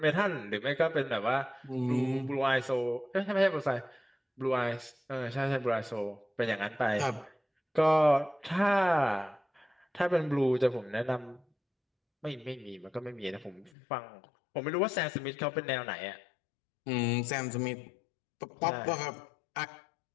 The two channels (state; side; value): drops out; right; at 13.7 s